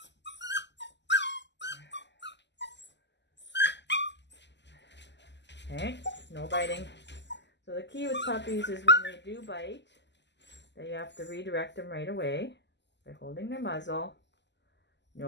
Okay, no biting. So the key with puppies is when they do bite, that you have to redirect them right away by holding their muzzle.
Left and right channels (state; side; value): late; right; 0.51 ms